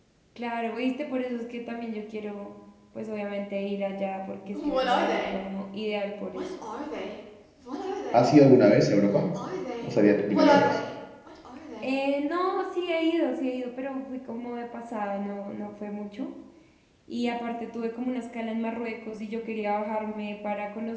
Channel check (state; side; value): identical; both; correlation 1.00